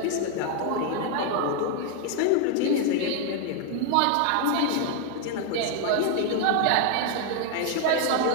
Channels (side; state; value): both; different; correlation 0.00